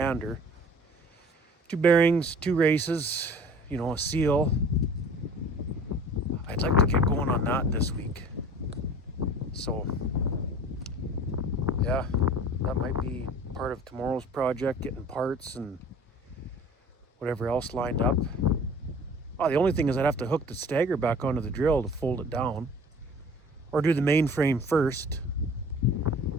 2 bearings, 2 races, a seal. I'd like to get going on that this week. So, yeah, that might be part of tomorrow's project, getting parts and whatever else lined up. Oh, the only thing is I'd have to hook the stagger back onto the drill to fold it down, or do the main frame first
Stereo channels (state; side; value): normal; both; correlation 0.45